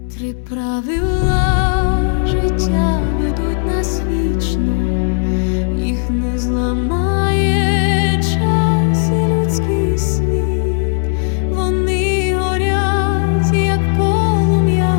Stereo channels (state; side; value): silent; right; digital silence